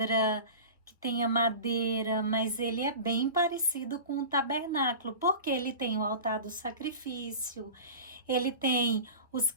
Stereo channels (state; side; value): inverted; both; correlation -0.35